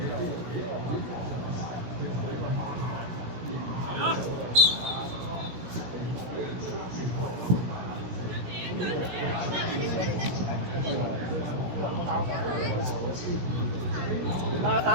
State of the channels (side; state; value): left; late; 17 ms